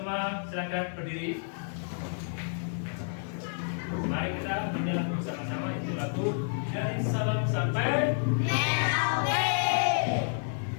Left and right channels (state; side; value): silent; right; digital silence